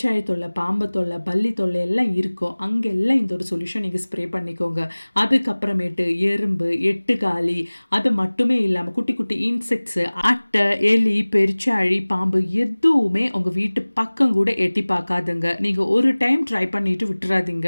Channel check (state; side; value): inverted; both; correlation -1.00